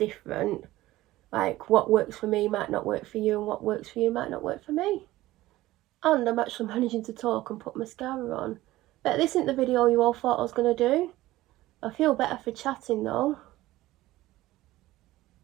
Like, what works for me might not work for you, and what works for you might not work for me. And I'm actually managing to talk and put mascara on. But this isn't the video you all thought I was going to do. I feel better for chatting though.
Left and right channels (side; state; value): left; quieter; 16.8 dB